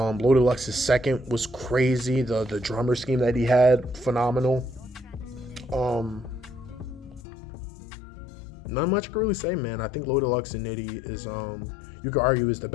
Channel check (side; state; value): right; drops out; at 7.2 s